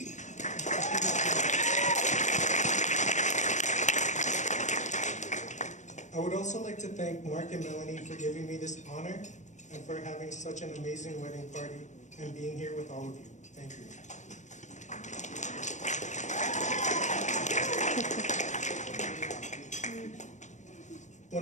I would also like to thank Mark and Melanie for giving me this honor and for having such an amazing wedding party and being here with all of you. Thank you.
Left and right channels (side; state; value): right; late; 0.35 ms